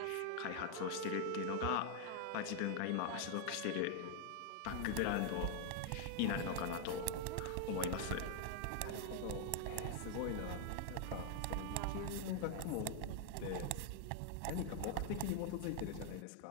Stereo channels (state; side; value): different; both; correlation 0.01